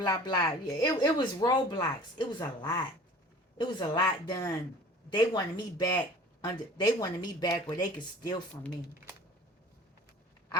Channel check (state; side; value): normal; both; correlation 0.45